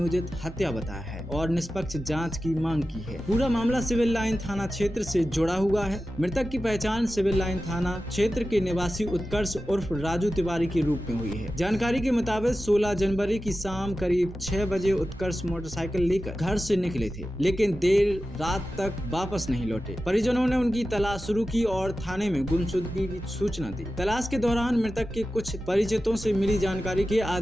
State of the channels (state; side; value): normal; both; correlation 0.93